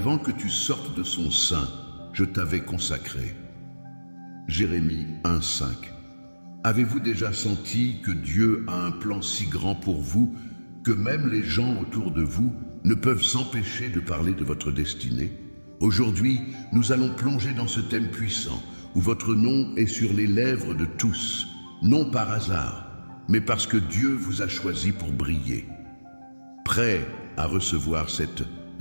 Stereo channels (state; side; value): inverted; both; correlation -1.00